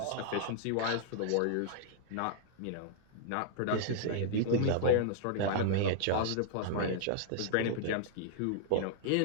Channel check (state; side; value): different; both; correlation -0.01